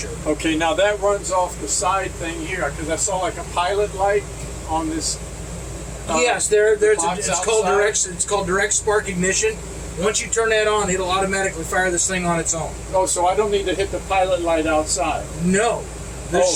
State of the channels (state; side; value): identical; both; correlation 1.00